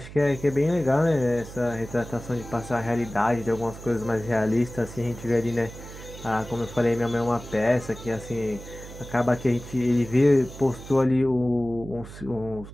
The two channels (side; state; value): right; noise; hum, 14 dB below the sound